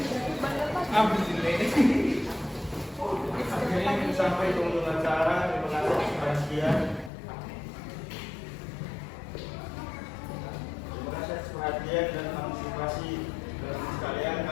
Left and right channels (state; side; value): drops out; right; at 7.1 s